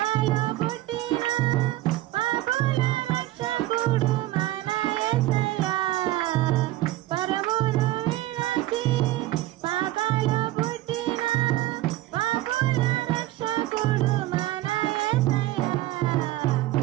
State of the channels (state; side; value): quieter; left; 16.2 dB